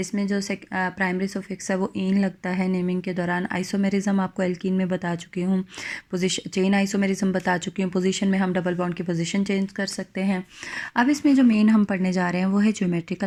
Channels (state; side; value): identical; both; correlation 1.00